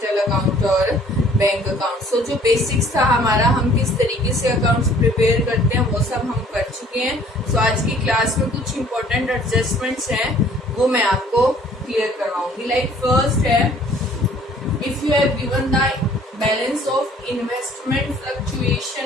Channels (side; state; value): both; normal; correlation 0.56